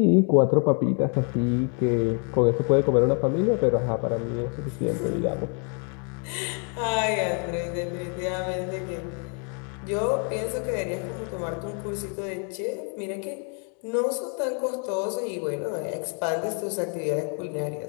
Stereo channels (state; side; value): quieter; right; 39.0 dB